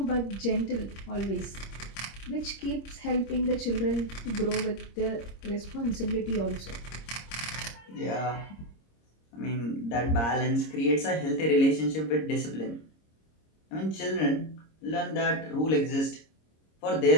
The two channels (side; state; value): right; late; 26 ms